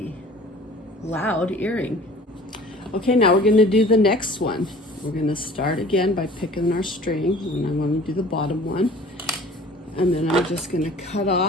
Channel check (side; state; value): both; normal; correlation 0.47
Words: loud earring. Okay, now we're gonna do the next one. We're gonna start again by picking our string, and I wanna do the bottom one. And then I'm just gonna cut